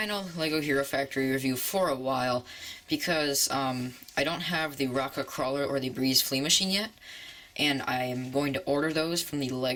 LEGO Hero Factory review for a while, because I don't have the Rocka Crawler or the Breez Flea Machine yet, and I am going to order those from the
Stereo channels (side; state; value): both; identical; correlation 1.00